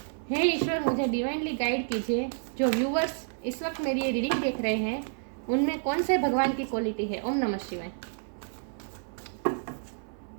हे ईश्वर, मुझे डिवाइनली गाइड कीजिए। जो व्यूवर्स इस वक्त मेरी ये रीडिंग देख रहे हैं उनमें कौन से भगवान की क्वालिटी है। ओम नमः शिवाय।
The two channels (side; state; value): left; silent; 58 dB below the other